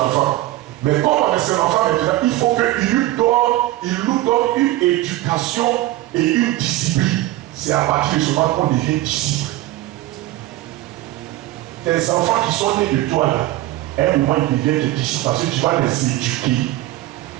enfant. Mais comme on est son enfant maintenant, il faut qu'il nous donne une éducation et une discipline. C'est à partir de ce moment qu'on devient disciple. Tes enfants qui sont nés de toi là, à un moment ils deviennent des disciples parce que tu vas les éduquer.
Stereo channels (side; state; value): left; quieter; 16.4 dB